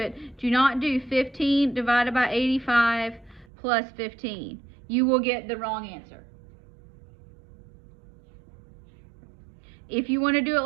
Do not do 15 divided by 85 plus 15. You will get the wrong answer. If you want to do it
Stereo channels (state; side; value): drops out; left; at 3.5 s